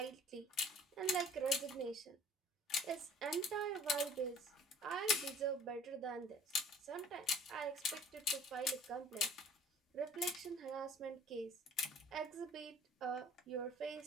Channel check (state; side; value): normal; both; correlation 0.51